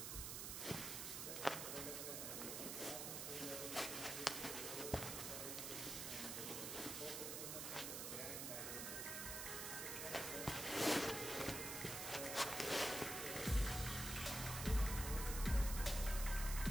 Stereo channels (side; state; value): right; noise; hiss, 3 dB below the sound